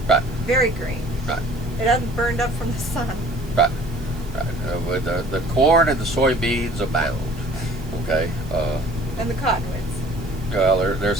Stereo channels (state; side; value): noise; right; hiss, 24 dB below the sound